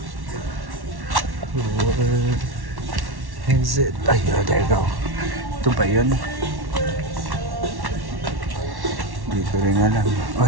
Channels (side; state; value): left; late; 1.1 ms